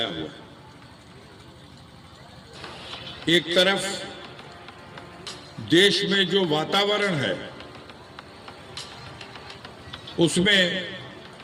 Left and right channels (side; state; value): both; identical; correlation 1.00